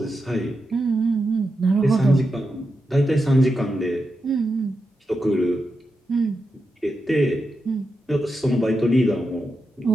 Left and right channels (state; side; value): normal; both; correlation 0.88